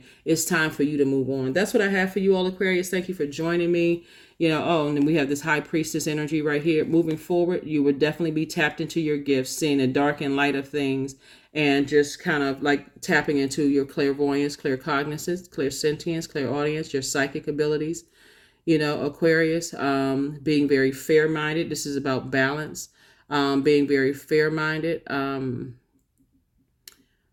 it's time for you to move on. That's what I have for you all, Aquarius. Thank you for joining me. And then we have this High Priestess energy right here. Moving forward, you would definitely be tapped into your gifts, seeing the dark and light of things, and just kind of like tapping into your clairvoyance, claircognizance, clairsentience, clairaudience, your psychic abilities. Aquarius, being very fair-minded. This is about balance, being very fair-minded,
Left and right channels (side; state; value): both; identical; correlation 1.00